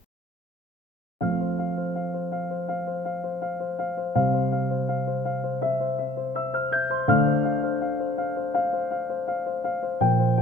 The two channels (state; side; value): normal; both; correlation 0.59